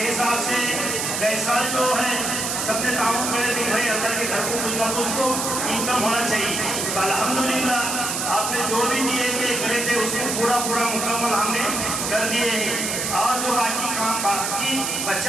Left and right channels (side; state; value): right; noise; hiss, 1 dB below the sound